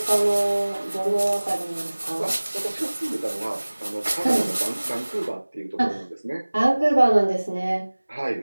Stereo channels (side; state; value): both; inverted; correlation -1.00